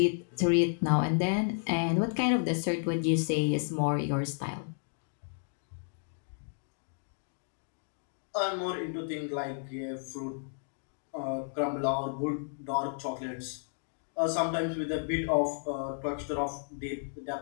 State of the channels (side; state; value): right; silent; digital silence